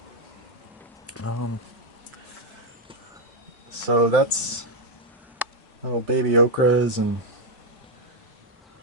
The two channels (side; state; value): both; normal; correlation 0.02